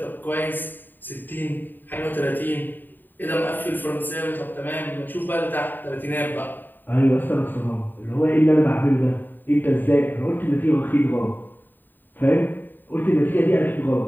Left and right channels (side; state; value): right; late; 0.091 ms